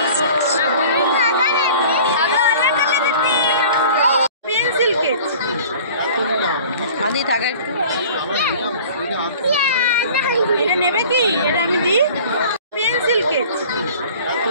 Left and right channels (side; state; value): both; inverted; correlation -0.45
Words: পেন্সিল কেক হাদি থাকে একটু। এটা নেবে কি? এটা আমি দিই। পেন্সিল কেক